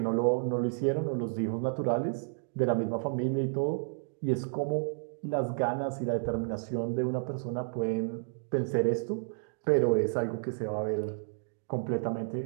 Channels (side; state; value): left; silent; digital silence